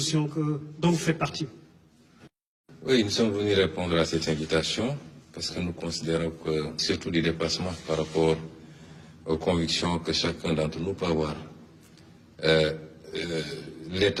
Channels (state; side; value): identical; both; correlation 1.00